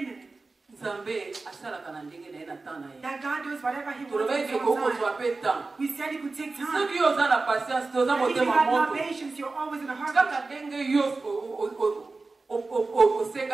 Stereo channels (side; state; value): left; quieter; 3.7 dB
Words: nzambe asalaka na ndenge na ye na temps na ye that God does whatever He wants tolobaki in ke His own kokozwa time. mpe temps We said it could take time. soki yo oza na patience te oza If you motema have no moto patience, you're always in a hurry. kaka ndenge yo